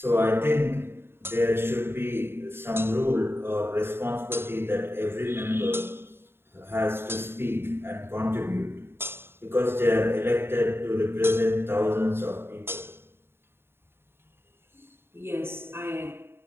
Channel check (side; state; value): left; late; 0.11 ms